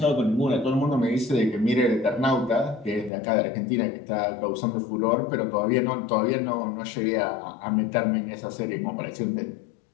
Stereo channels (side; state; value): right; drops out; at 3.1 s